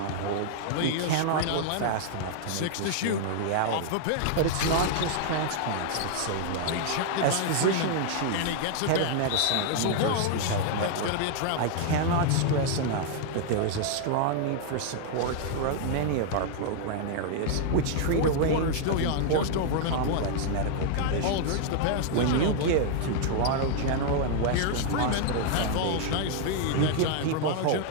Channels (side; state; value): both; different; correlation 0.00